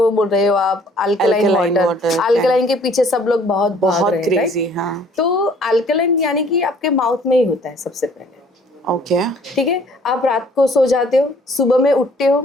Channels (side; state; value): both; normal; correlation 0.58